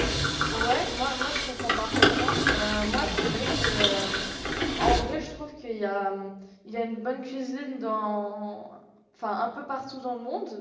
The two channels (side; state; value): both; identical; correlation 1.00